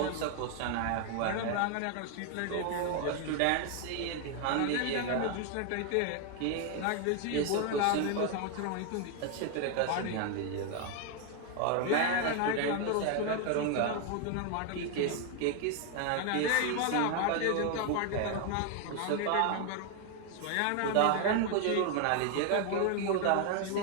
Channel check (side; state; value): both; different; correlation 0.01